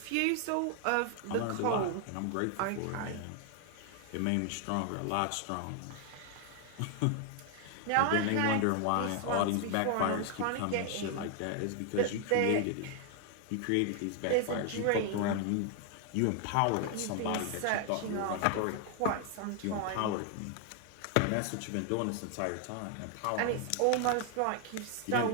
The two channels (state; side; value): different; both; correlation 0.00